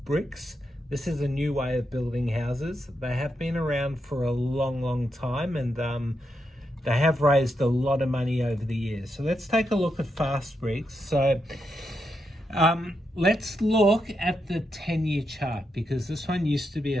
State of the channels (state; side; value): normal; both; correlation 0.83